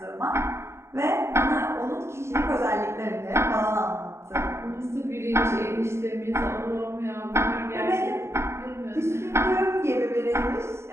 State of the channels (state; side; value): late; left; 0.13 ms